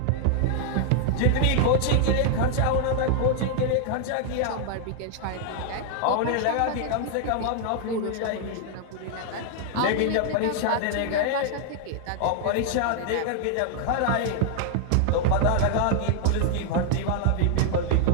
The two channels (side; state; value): both; different; correlation 0.00